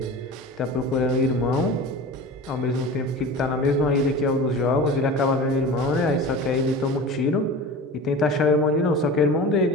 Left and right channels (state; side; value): normal; both; correlation 0.34